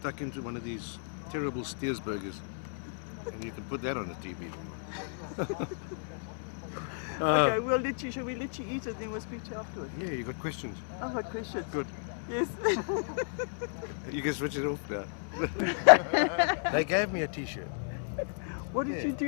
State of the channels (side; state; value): right; silent; digital silence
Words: into one of these terrible Steers burgers. And you can put that on the TV if you want. Okay, shall we let you eat it, then we'll speak to you afterwards? Yeah, you got questions? I've got questions. Good. Yes. You can switch it off now. They gave me a t-shirt. What did Yeah. you